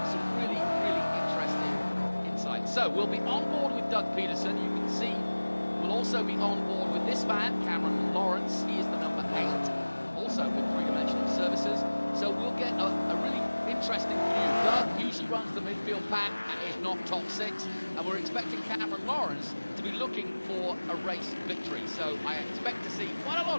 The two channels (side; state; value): both; inverted; correlation -1.00